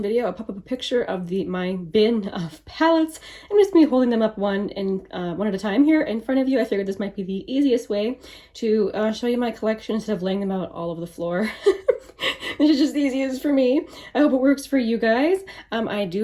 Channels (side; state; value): both; identical; correlation 1.00